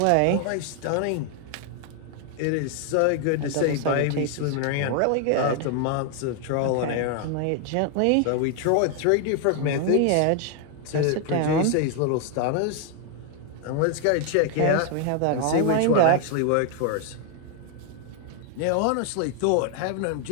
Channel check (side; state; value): both; different; correlation 0.00